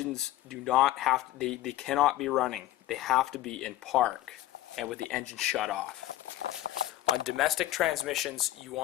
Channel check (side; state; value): right; quieter; 14.9 dB